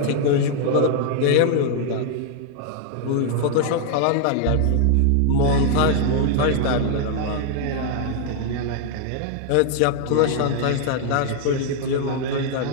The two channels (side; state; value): both; different; correlation 0.00